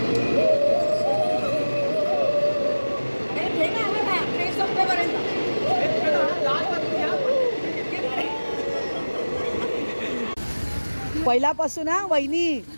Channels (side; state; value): both; inverted; correlation -1.00